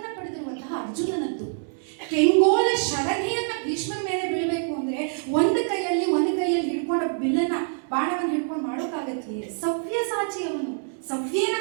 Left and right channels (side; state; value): left; silent; 61 dB below the other